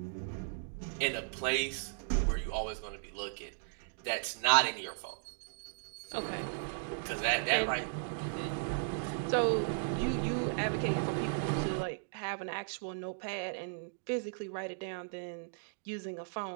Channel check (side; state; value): left; silent; digital silence